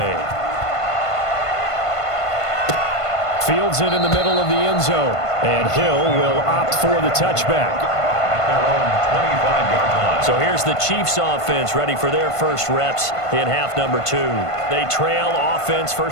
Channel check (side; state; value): right; late; 1.5 ms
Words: Fields it in the middle of the end zone. And Hill will opt for the touchback. At their own 25-yard line. So here's the Chiefs offense ready for their first reps in half number 2. They trail offense,